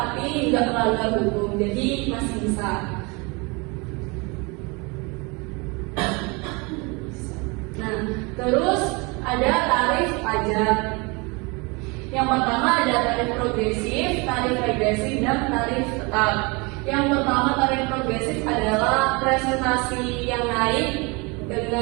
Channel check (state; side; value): quieter; left; 28.1 dB